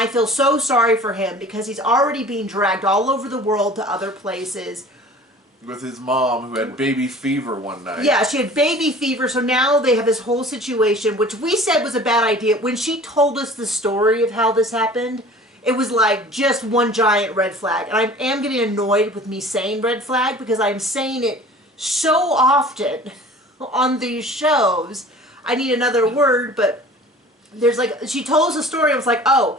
feel so sorry for him because he's already being dragged all over the world to other places. With his mom, who had baby fever one night. Yeah, she had baby fever, so now they have this whole situation, which we said was a bad idea. When she told us the story of how this happened, it was like just one giant red flag. And I am getting annoyed with me saying red flag because I'm saying it so often on these shows. I need another word, but there's like, she told us a story, I was like,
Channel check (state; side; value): normal; both; correlation 0.45